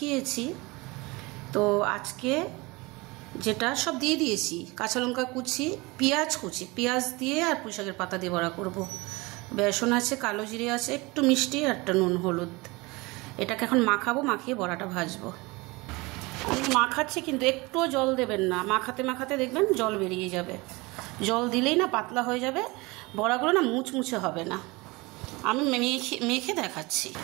তো আজকে যেটা সব দিয়ে দিয়েছি, কাঁচা লঙ্কা কুচি, পেঁয়াজ কুচি, পেঁয়াজ দিয়ে আর পুঁই শাকের পাতা দিয়ে বড়া করব। বেসন আছে, কালো জিরে আছে, একটু মিষ্টি আর একটা নুন হলুদ। এটাকে এখন মাখাবো, মাখিয়ে বড়াটা ভাজবো। আমি মাখাচ্ছি কিন্তু একটুও জল দেবেন না। মাখাতে মাখাতে দেখবেন জল বেরিয়ে যাবে। জল দিলেই না পাতলা হয়ে যাবে, বড়াগুলো না মুচমুচে হবে না। আমি মেখে দেখাচ্ছি।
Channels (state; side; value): quieter; left; 24.2 dB